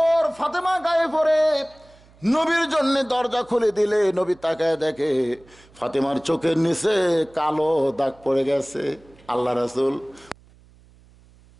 ফাতেমা গায়ে পরে নবীর জন্য দরজা খুলে দিলে, নবী তাকায় দেখে ফাতেমার চোখের নিচে কালো দাগ পড়ে গেছে। আল্লাহ রাসূল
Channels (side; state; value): right; noise; hum, 28 dB below the sound